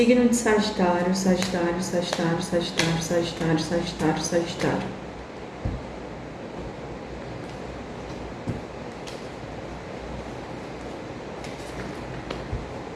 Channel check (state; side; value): identical; both; correlation 1.00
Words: de Sagitário, Sagitário, Sagitário, Sagitário, Sagitário, Sagitário, Sagitário.